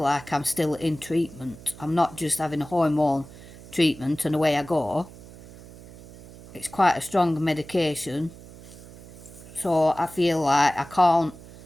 I'm still in treatment. I'm not just having a hormone treatment and away I go. It's quite a strong medication. So I feel like I can't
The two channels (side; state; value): right; noise; hum, 18 dB below the sound